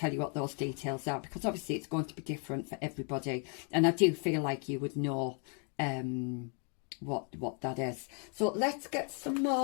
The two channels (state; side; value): quieter; right; 39.8 dB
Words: you what those details are, because obviously it's going to be different for everybody. And I do feel like you would know what that is. So let's get some